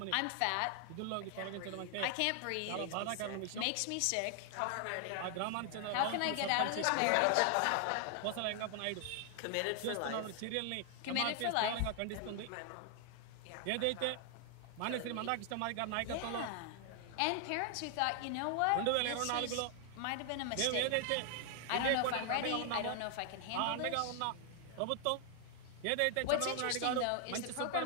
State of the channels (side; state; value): both; different; correlation 0.00